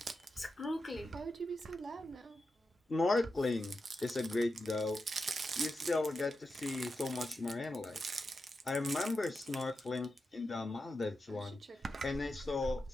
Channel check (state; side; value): normal; both; correlation 0.89